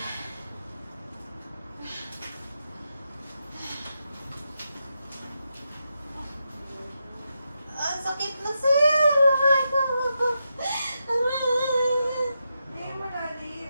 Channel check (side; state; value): both; inverted; correlation -0.86